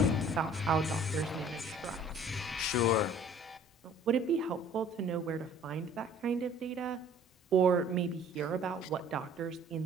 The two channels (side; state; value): both; normal; correlation 0.52